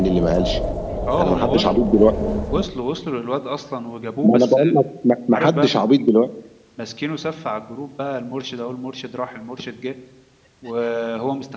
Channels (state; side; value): identical; both; correlation 1.00